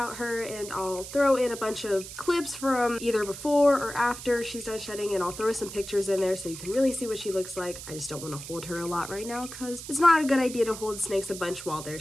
her, and I'll throw in a bunch of clips from either before or after she's done shedding, and I'll throw some pictures in there so you can really see what she looks like. I just don't want to hold her a lot right now because it's not a good idea to hold snakes a bunch while they're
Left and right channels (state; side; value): noise; right; hiss, 11 dB below the sound